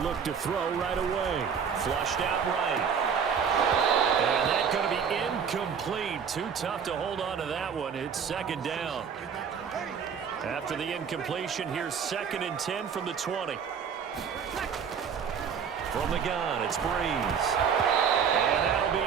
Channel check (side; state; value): left; quieter; 6.9 dB